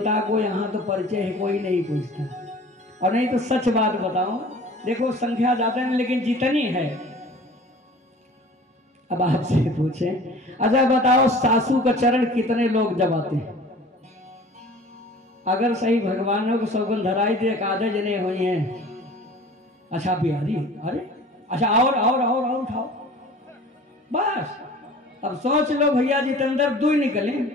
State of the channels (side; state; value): both; normal; correlation 0.45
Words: को यहाँ तो परिचय है कोई नहीं पूछता। और नहीं तो सच बात बताऊं, देखो संख्या ज्यादा नहीं लेकिन जितनी है, अब आपसे पूछें, अच्छा बताओ सासू का चरण कितने लोग दबाते हैं? अगर सही भगवानों को सौगंध धराई दे, आधे जने हुई हैं। अच्छा बिहारी, अरे अच्छा और उठाओ बस। अब सोच लो भैया जितेंद्र 2 निकले,